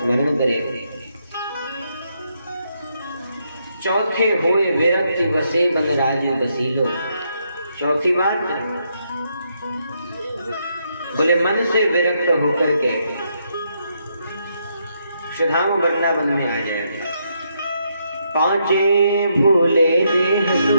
करे। चौथे होए विरक्ति बसे बन राजू बसीलो। चौथी बात, बोले मन से विरक्त होकर के सुधाम वृंदावन में आ जाए। पांचे भूले देह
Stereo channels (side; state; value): both; inverted; correlation -0.77